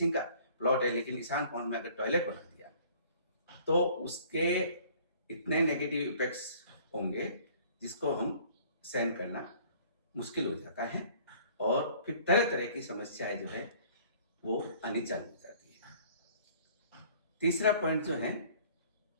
का प्लॉट है लेकिन ईशान कोण में अगर टॉयलेट बना दिया तो उसके इतने नेगेटिव इफेक्ट्स होंगे जिसको हम सहन करना मुश्किल हो जाता है और फिर तरह तरह की समस्याएं जो है वो आनी चालू हो जाती है। तीसरा पॉइंट जो है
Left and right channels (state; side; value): inverted; both; correlation -0.54